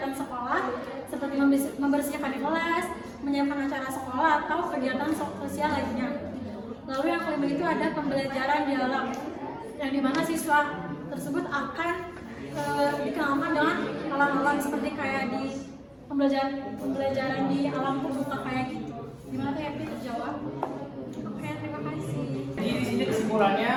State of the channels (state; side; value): identical; both; correlation 1.00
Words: sekolah seperti membersihkan kelas, menyiapkan acara sekolah atau kegiatan sosial lainnya. Lalu yang kelima itu ada pembelajaran dialog yang dimana siswa tersebut akan dikenalkan dengan alam-alam seperti kayak di pembelajaran di alam terbuka kayak gitu. Gimana tuh Epi terjawab? Oke, terima kasih. Jadi di sini